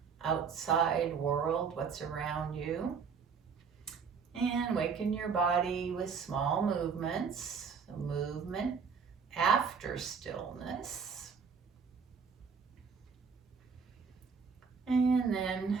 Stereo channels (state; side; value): quieter; left; 5.9 dB